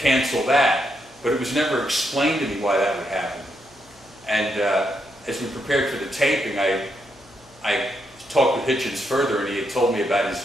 that. But it was never explained to me why that would happen. And as we prepared for the taping, I talked with Hitchens further, and he had told me about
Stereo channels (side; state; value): left; noise; hum, 29 dB below the sound